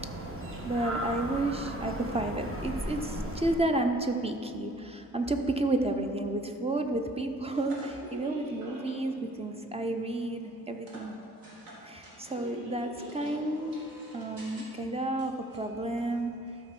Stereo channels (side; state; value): both; normal; correlation 0.57